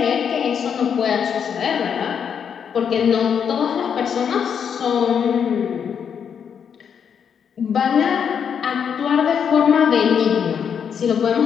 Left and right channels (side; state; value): right; quieter; 7.5 dB